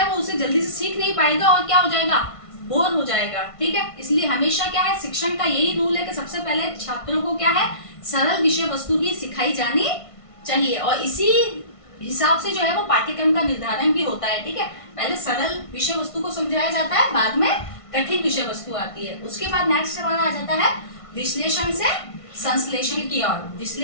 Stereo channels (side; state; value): right; late; 1.5 ms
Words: वो उसे जल्दी से सीख नहीं पाएगा और क्या हो जाएगा, बोर हो जाएगा, ठीक है। इसलिए हमेशा क्या है, शिक्षण का यही रूल है कि सबसे पहले छात्रों को क्या है, सरल विषय वस्तु ही सिखाई जानी चाहिए, और इसी हिसाब से जो है वो पाठ्यक्रम का निर्धारण भी होता है, ठीक है। पहले सरल विषय वस्तु को समझाया जाता है, बाद में कठिन विषय वस्तु आती है। उसके बाद नेक्स्ट हमारा आ जाता है विश्लेषण से संश्लेषण की ओर।